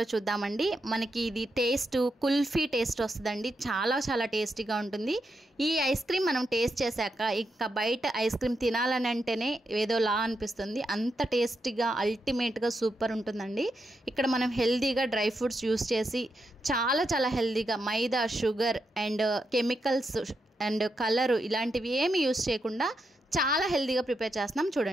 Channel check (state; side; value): normal; both; correlation 0.84